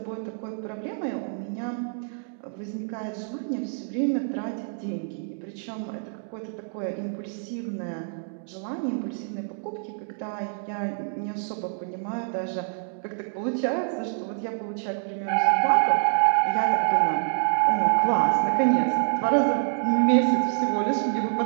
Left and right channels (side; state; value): left; silent; digital silence